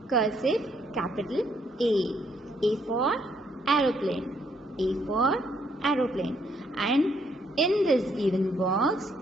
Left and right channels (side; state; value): both; normal; correlation 0.70